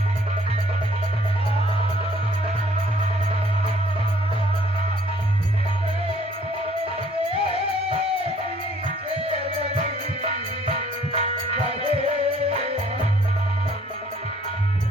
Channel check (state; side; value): normal; both; correlation 0.60